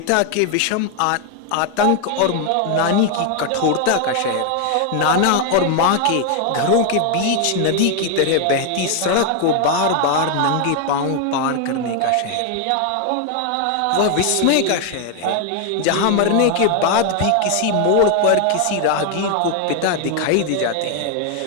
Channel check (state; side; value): different; both; correlation 0.00